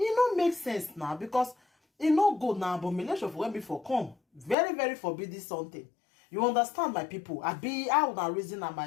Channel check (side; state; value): right; drops out; at 4.5 s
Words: don't make sense now because it no good now. Abomination for when before come very forbidden something. You understand, my people? I wanna reason